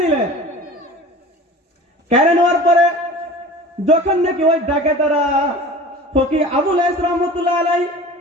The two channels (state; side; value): normal; both; correlation 0.39